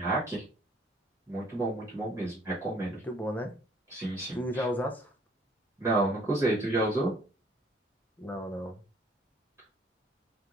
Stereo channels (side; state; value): both; normal; correlation 0.59